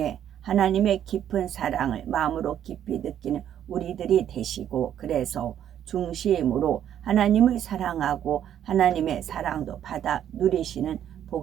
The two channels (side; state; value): left; quieter; 10.2 dB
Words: 하나님의 깊은 사랑을 마음으로 깊이 느끼는 우리들이 되시고, 그래서 중심으로 하나님을 사랑하고 하나님의 사랑도 받아 누리시는